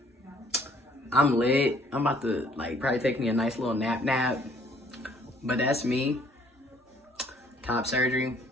I'm lit. I'm about to like probably take me a nice little nap. But that's me. Top surgery,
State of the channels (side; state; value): both; normal; correlation 0.60